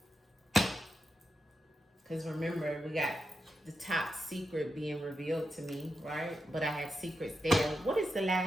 Because remember, we got the top secret being revealed to me, right? But I had secrets there. What is the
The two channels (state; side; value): normal; both; correlation 0.87